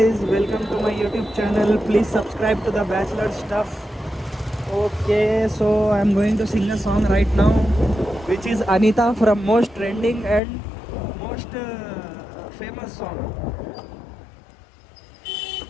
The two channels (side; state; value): right; drops out; at 10.4 s